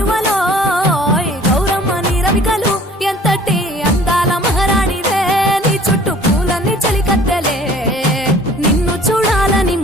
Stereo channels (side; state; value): both; normal; correlation 0.51